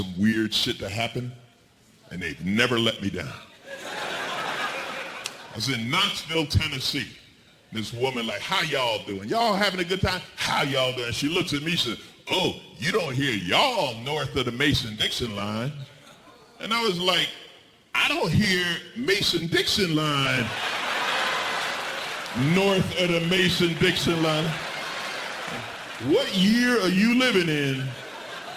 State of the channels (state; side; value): identical; both; correlation 1.00